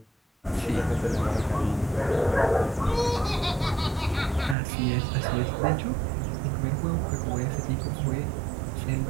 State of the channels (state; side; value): drops out; left; at 4.5 s